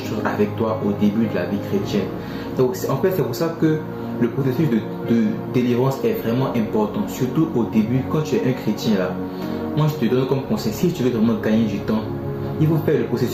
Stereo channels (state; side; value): identical; both; correlation 1.00